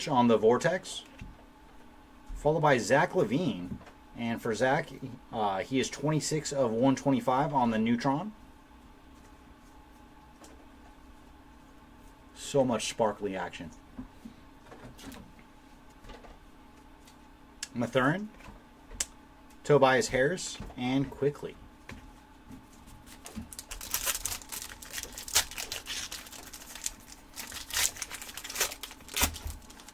on the Vortex, followed by Zach LaVine. And for Zach, he is 26 of 125 on the Neutron. So much sparkly action. Mathurin, Tobias Harris, and Quickly.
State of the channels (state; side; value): identical; both; correlation 1.00